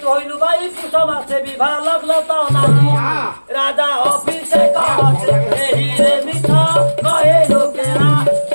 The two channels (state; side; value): inverted; both; correlation -1.00